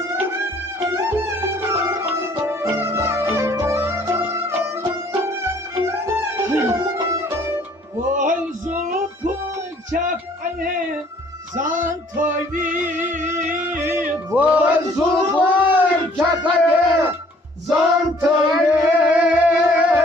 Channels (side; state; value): both; normal; correlation 0.58